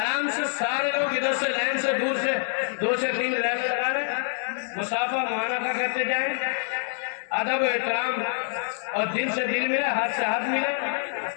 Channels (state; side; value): silent; right; 57 dB below the other